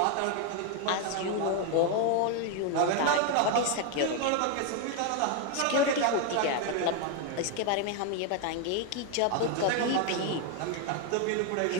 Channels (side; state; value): both; different; correlation 0.01